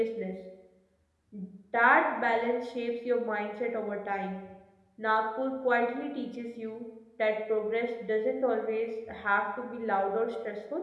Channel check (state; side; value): identical; both; correlation 1.00